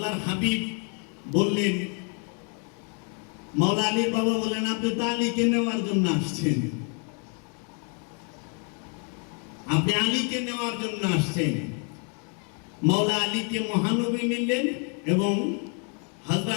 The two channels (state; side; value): quieter; right; 37.4 dB